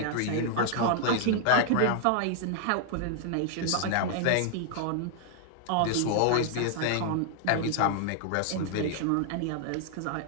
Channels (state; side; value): different; both; correlation 0.00